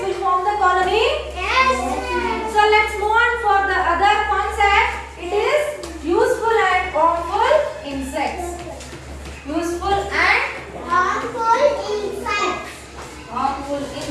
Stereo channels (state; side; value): identical; both; correlation 1.00